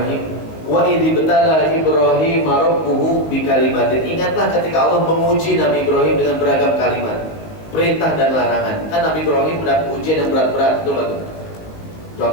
Wa idzi betala Ibrahim rabbuhu bikalimatin. Ingatlah ketika Allah menguji Nabi Ibrahim dengan beragam kalimat, perintah dan larangan. Kan Nabi Ibrahim mendapat ujian yang berat-berat, betul nggak tuh?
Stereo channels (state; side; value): late; right; 19 ms